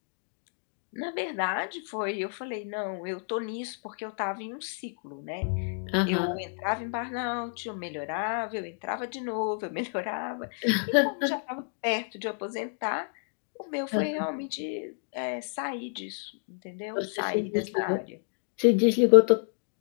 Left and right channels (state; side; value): silent; right; digital silence